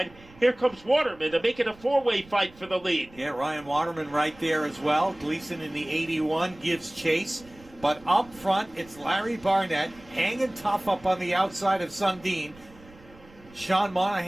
Here comes Waterman to make it a four-way fight for the lead. Yeah, Ryan Waterman right there as well. Gleason in the 81 gives chase. But up front, it's Larry Barnett hanging tough up on the outside of Sundin. Sean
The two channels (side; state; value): right; noise; rumble, 24 dB below the sound